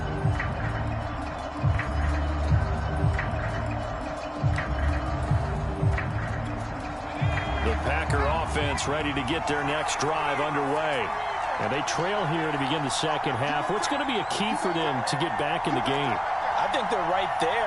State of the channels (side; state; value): both; identical; correlation 1.00